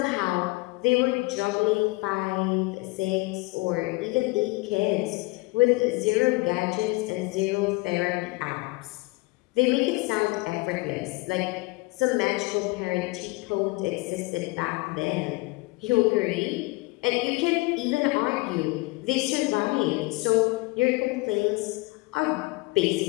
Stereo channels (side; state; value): right; quieter; 23.9 dB